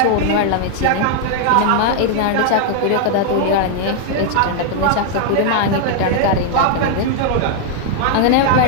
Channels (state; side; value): different; both; correlation 0.00